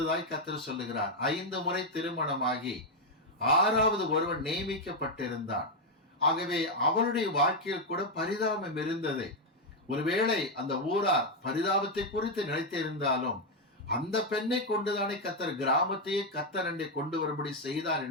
கர்த்தர் சொல்லுகிறார். 5 முறை திருமணமாகி 6வது ஒருவன் நியமிக்கப்பட்டிருந்தான். ஆகவே அவளுடைய வாழ்க்கையில் கூட பரிதாபம் இருந்தது. ஒருவேளை அந்த ஊரார் பரிதாபத்தை குறித்து நினைத்திருந்தாலும் அந்த பெண்ணை கொண்டுதானே கர்த்தர் கிராமத்தையே கர்த்தர் அண்டை கொண்டு வரும்படி செய்தார்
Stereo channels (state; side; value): normal; both; correlation 0.02